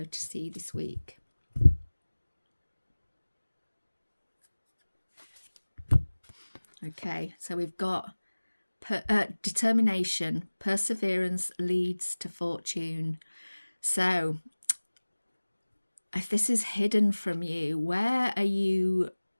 to see this week? Okay, so we've got determination, perseverance leads to fortune. So if this is hidden from you, where are you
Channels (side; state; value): both; inverted; correlation -1.00